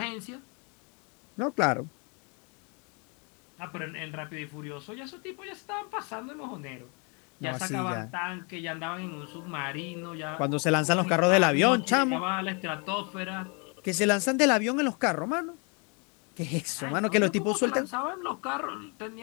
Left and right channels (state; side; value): quieter; right; 34.0 dB